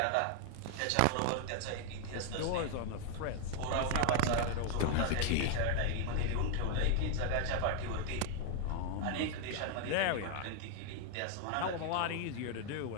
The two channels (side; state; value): both; different; correlation 0.00